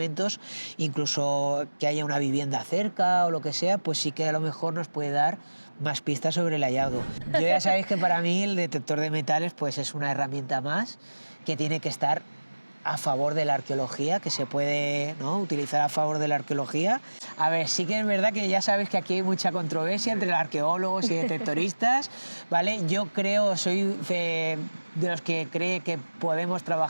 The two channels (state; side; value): inverted; both; correlation -1.00